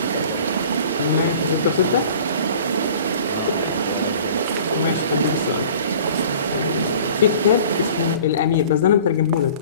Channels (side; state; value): both; inverted; correlation -0.46